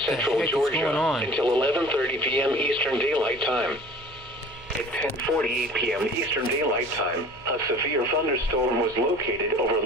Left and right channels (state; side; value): noise; right; hum, 23 dB below the sound